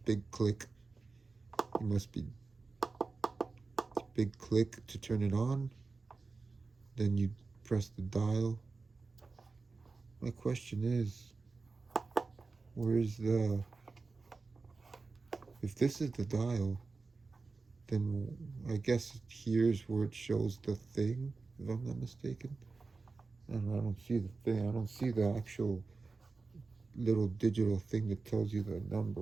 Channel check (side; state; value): left; quieter; 4.0 dB